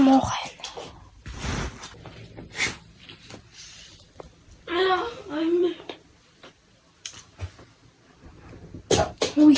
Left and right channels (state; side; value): identical; both; correlation 1.00